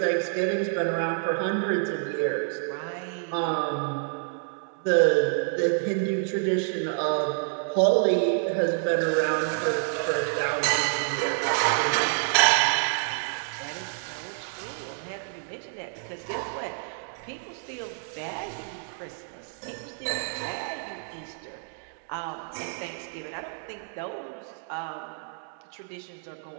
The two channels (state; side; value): silent; left; 59 dB below the other